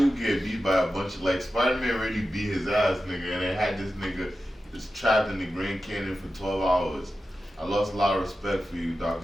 get beat by a bunch of, like, Spider-Man really beat his ass, nigga, and they had this nigga just trapped in the Grand Canyon for 12 hours. I lost a lot of respect for you, Doctor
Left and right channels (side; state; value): both; normal; correlation 0.92